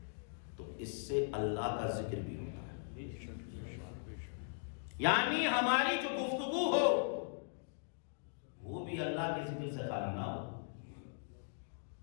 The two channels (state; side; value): silent; right; digital silence